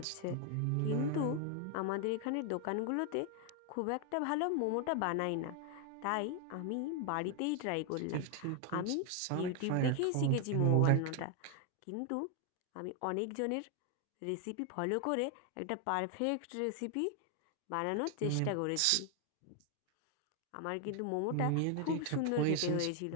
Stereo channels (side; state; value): both; different; correlation 0.00